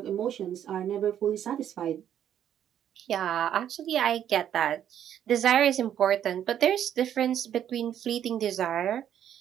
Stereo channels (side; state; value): left; quieter; 10.1 dB